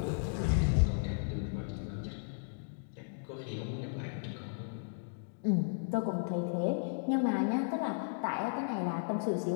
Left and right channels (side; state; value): right; silent; digital silence